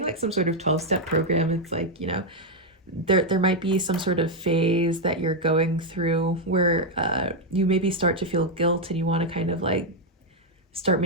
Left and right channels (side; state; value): both; normal; correlation 0.01